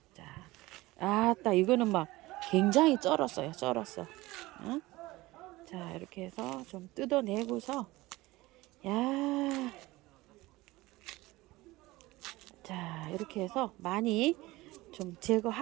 자, 아따 이거는 막 굉장히 쩔었어요. 쩔었어. 어? 자, 이렇게 해서 좀 뜯어내고서 야, 자, 이렇게 해서 많이 좀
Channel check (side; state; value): left; quieter; 19.6 dB